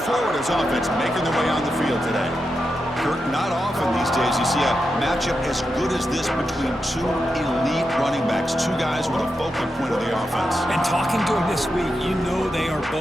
Florida's offense making their way on the field today. Kurt, not often these days you see a matchup as good as this between two elite running backs, two guys with a focal point of the offense. And talking to them this week, you know they are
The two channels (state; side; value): normal; both; correlation 0.87